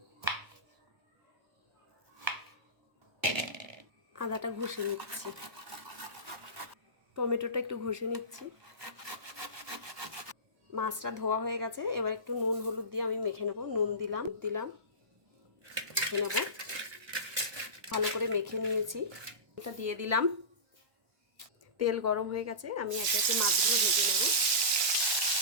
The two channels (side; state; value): left; late; 1.1 ms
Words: আদাটা ঘষে নিচ্ছি, টমেটোটা একটু ঘষে নিচ্ছি। মাছটা ধোয়া হয়ে গেছে, এবার একটু নুন হলুদ দিয়ে আমি মেখে নেব। নুন দিলাম মেখে নেব। ভালো করে মেখে নিয়েছি, এটা দিয়ে দিলাম। তেল গরম হয়ে গেছে, আমি একে একে মাছগুলো ভেজে নেব।